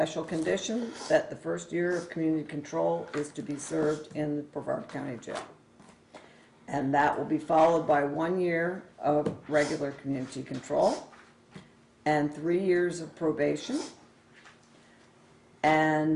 condition that the first year of community control is to be served in the Brevard County Jail. And that will be followed by 1 year of regular community control and 3 years of probation.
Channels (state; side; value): identical; both; correlation 1.00